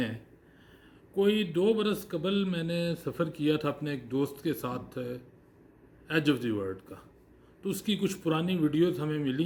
ہیں؟ کوئی 2 برس قبل میں نے سفر کیا تھا اپنے ایک دوست کے ساتھ ایج آف دی ورلڈ کا، تو اس کی کچھ پرانی ویڈیوز ہمیں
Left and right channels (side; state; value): both; identical; correlation 1.00